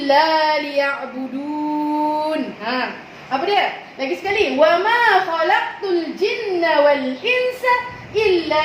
liya'budun. Apa dia? Lagi sekali. Wa ma khalaqtul jinna wal insa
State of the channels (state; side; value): identical; both; correlation 1.00